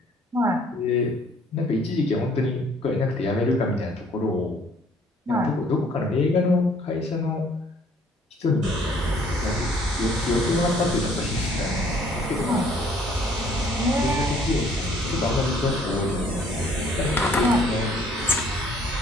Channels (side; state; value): both; normal; correlation 0.59